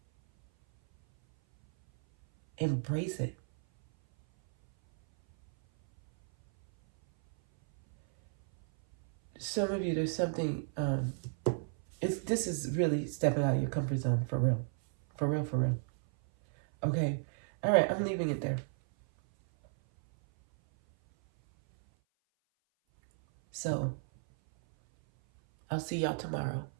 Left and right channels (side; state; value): left; silent; 56 dB below the other